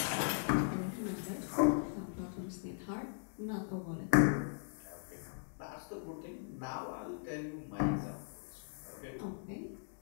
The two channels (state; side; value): silent; right; digital silence